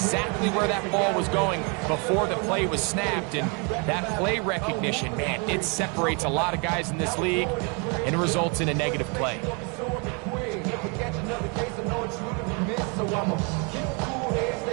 where that ball was going before the play was snapped, and that play recognition, man, it separates a lot of guys in this league, and it results in a negative play. Stay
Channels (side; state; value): left; quieter; 33.7 dB